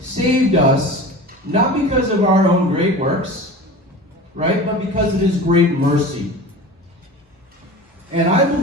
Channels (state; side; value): normal; both; correlation 0.35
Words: us not because of our own great works, right, but because of his great mercy. And I